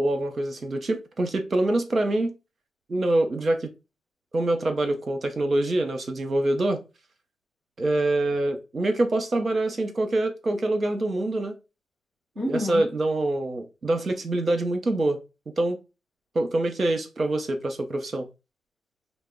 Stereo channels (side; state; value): both; normal; correlation 0.94